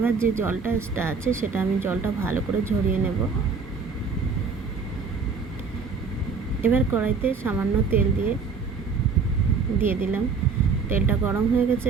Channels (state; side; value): quieter; left; 5.1 dB